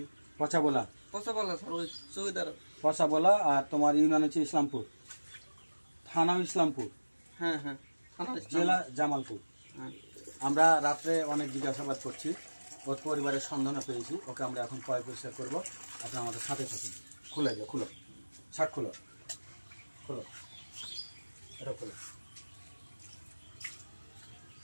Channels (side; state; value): both; inverted; correlation -1.00